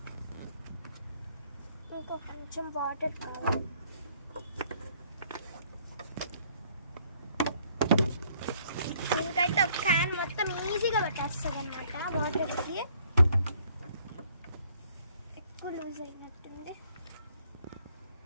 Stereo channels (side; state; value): both; inverted; correlation -0.63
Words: ఇంకా కొంచెం వాటర్ కావాలి. దీనికైతే ఒక క్యాన్ మొత్తం ఈజీగా పట్టేస్తుంది అనమాట. వాటర్కి ఎక్కువ లూజ్ అయినట్టుంది.